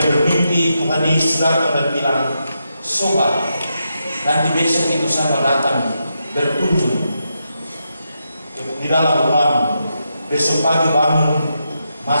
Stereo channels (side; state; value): both; inverted; correlation -0.84